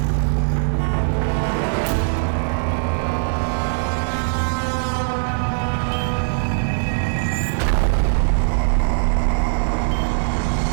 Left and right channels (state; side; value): silent; left; 58 dB below the other